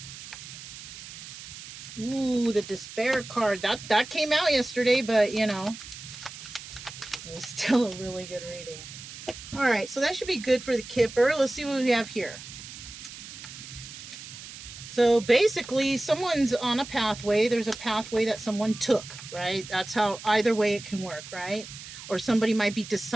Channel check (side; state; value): right; noise; hiss, 13 dB below the sound